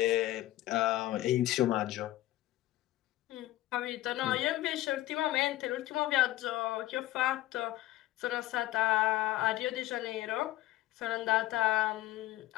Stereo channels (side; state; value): right; quieter; 16.0 dB